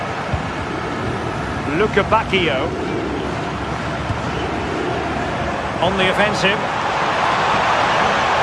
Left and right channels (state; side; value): identical; both; correlation 1.00